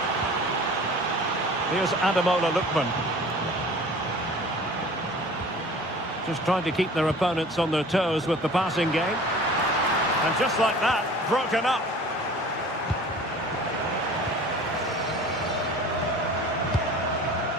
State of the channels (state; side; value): normal; both; correlation 0.44